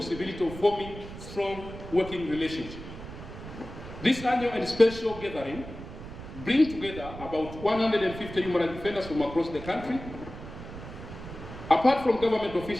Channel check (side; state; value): right; noise; rumble, 12 dB below the sound